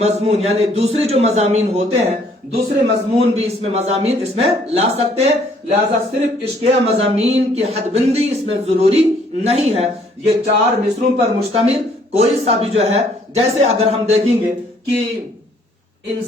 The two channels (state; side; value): normal; both; correlation 0.63